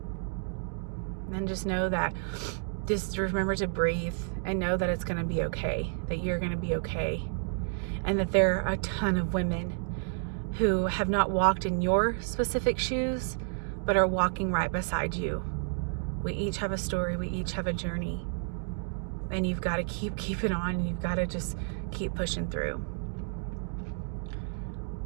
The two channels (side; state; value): left; silent; 57 dB below the other